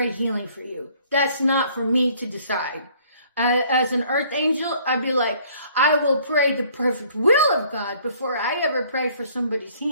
healing for you. That's not for me to decide. As an earth angel, I'd be like, I will pray the perfect will of God before I ever pray for somebody's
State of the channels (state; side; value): inverted; both; correlation -0.59